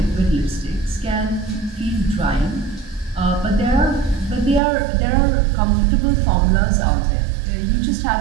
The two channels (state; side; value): drops out; left; at 4.6 s